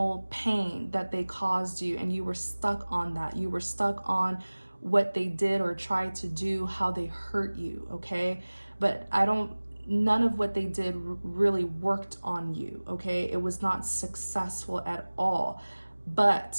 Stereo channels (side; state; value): both; inverted; correlation -1.00